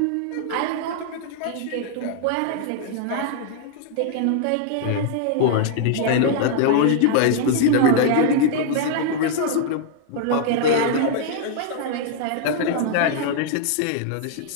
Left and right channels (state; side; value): different; both; correlation -0.01